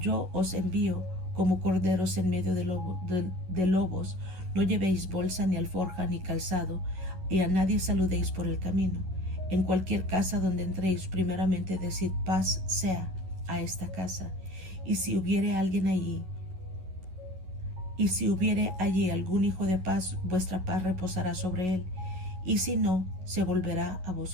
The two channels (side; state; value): left; late; 11 ms